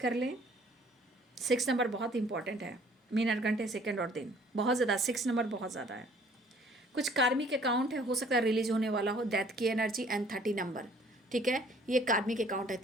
लें। 6 नंबर बहुत इंपॉर्टेंट है, मिनट घंटे सेकंड और दिन बहुत ज़्यादा, 6 नंबर बहुत ज़्यादा है। कुछ कार्मिक अकाउंट है, हो सकता है रिलीज होने वाला हो, डेथ की एनर्जी एंड 30 नंबर, ठीक है, ये कार्मिक अकाउंट है।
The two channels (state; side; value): normal; both; correlation 0.57